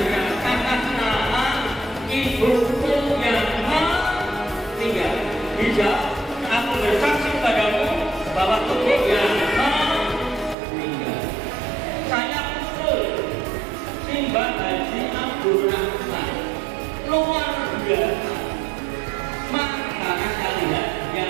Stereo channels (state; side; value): drops out; left; at 10.6 s